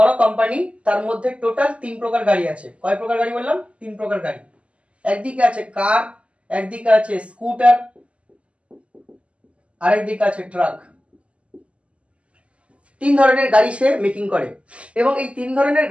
কোম্পানি, তার মধ্যে টোটাল 3 প্রকার গাড়ি আছে। কয় প্রকার গাড়ি বললাম? 3 প্রকার গাড়ি। একদিকে আছে কার, একদিকে আছে স্কুটার, আরেকদিকে আছে ট্রাক। 3 ধরনের গাড়ি সে মেকিং করে এবং এই 3 ধরনের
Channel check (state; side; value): late; left; 0.059 ms